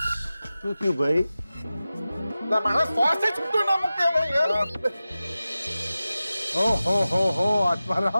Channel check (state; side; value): inverted; both; correlation -0.95